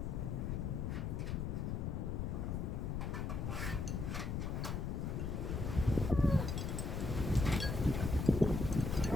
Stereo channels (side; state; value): left; noise; rumble, 1 dB below the sound